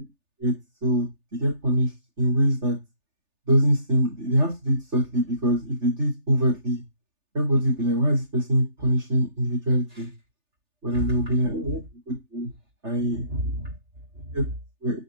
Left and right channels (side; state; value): left; late; 3.3 ms